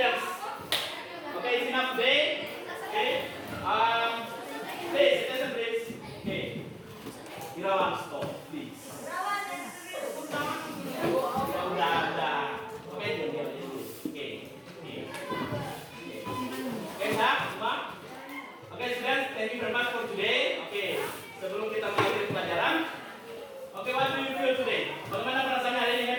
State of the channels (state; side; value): identical; both; correlation 1.00